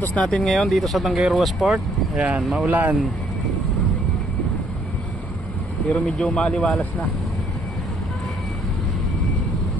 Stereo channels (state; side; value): normal; both; correlation 0.66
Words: natin ngayon dito sa Tanggayruas Port. Ayan, maulan. Pero medyo maliwalas na.